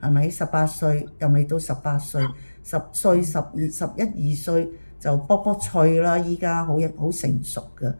係咪？18歲又未到18歲，10歲、11、12歲。就卜卜脆啦，依家好成熟嘅，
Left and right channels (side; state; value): both; inverted; correlation -1.00